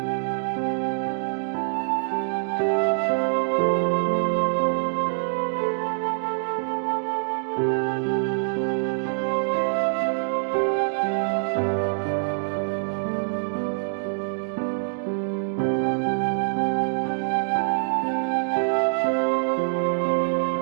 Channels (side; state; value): left; silent; digital silence